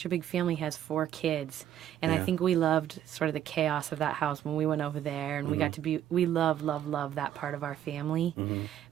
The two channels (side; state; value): left; quieter; 11.1 dB